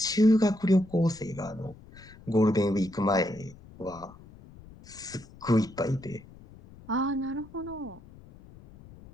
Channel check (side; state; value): left; noise; rumble, 21 dB below the sound